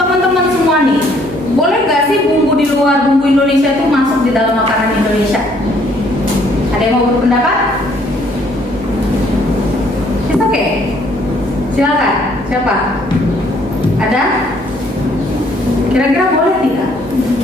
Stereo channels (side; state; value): right; noise; hum, 20 dB below the sound